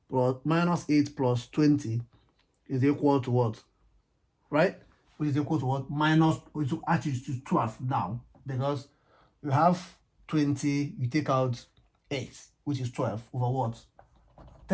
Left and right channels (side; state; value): both; identical; correlation 1.00